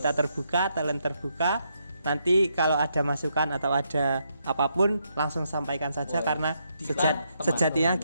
kita terbuka, talent terbuka. Nanti kalau ada masukan atau ada apapun langsung sampaikan saja, karena sejatinya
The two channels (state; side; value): inverted; both; correlation -0.78